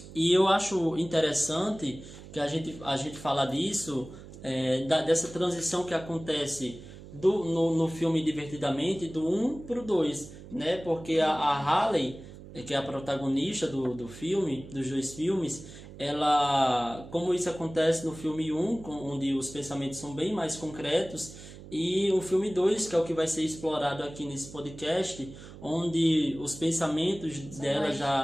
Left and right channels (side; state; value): right; noise; hum, 16 dB below the sound